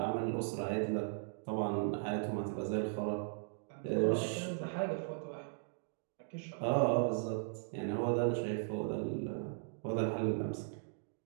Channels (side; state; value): left; silent; digital silence